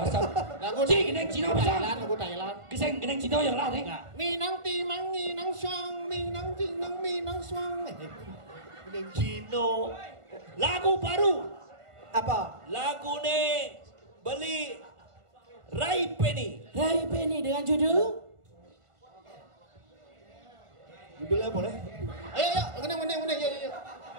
tuh? Lagu geneng Cina bisa. lagu Thailand. Keseng geneng Cina yang lah nih. Minang timang, minang suang, minang tinang, minang suang. Cino. Lagu baru. Apa? Lagu nih beli Rai Penny. Rai Penny dengan judul Judulnya boleh? Ayo, menang, yuk.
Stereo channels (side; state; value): left; late; 1.5 ms